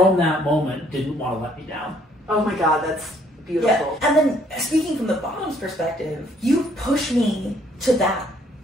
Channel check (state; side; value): normal; both; correlation 0.64